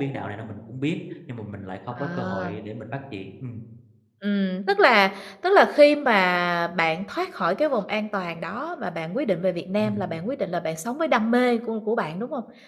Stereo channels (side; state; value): both; identical; correlation 1.00